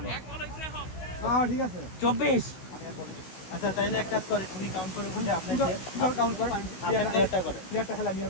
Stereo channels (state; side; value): late; right; 16 ms